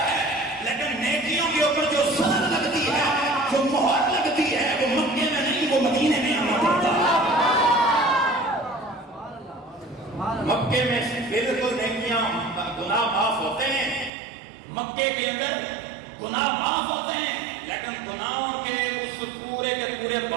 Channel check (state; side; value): drops out; left; at 14.1 s